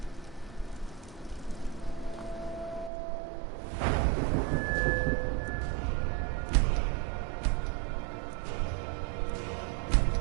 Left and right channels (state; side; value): drops out; left; at 2.9 s